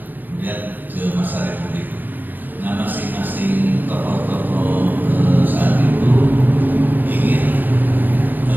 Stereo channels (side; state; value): left; late; 0.087 ms